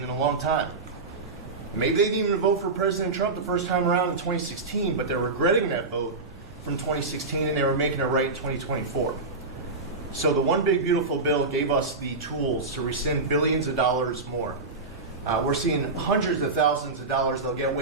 in a long time. Maybe they didn't even vote for President Trump the first time around in 2016, but they're regretting that vote from 2016, and they were making it right in 2024. So the One Big Beautiful Bill gave us the tools to rescind billions of dollars more. We're seeing hundreds of thousands of dollars that'll get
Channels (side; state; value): left; quieter; 3.6 dB